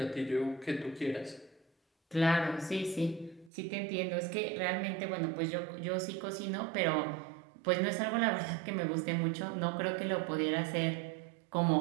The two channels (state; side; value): drops out; left; at 3.5 s